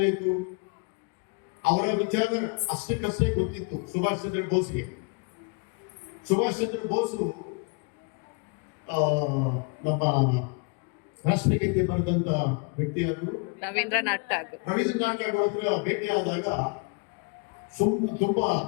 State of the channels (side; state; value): right; quieter; 33.2 dB